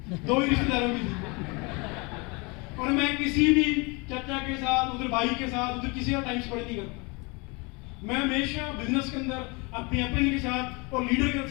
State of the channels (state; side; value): quieter; right; 28.8 dB